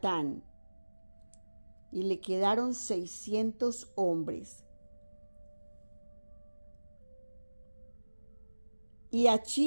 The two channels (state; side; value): inverted; both; correlation -1.00